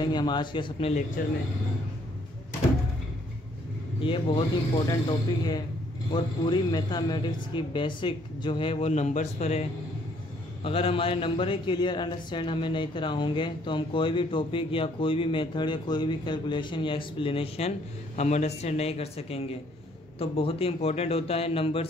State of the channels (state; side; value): normal; both; correlation 0.65